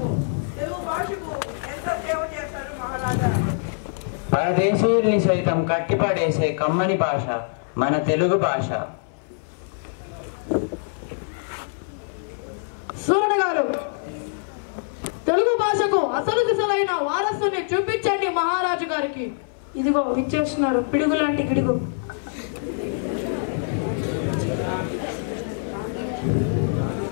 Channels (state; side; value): silent; right; 61 dB below the other